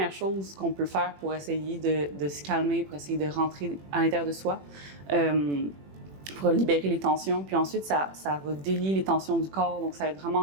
chose qu'on peut faire pour essayer de se calmer, pour essayer de rentrer à l'intérieur de soi, pour libérer les tensions. Puis ensuite, ça va délier les tensions du corps. Donc, ça va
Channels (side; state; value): left; late; 21 ms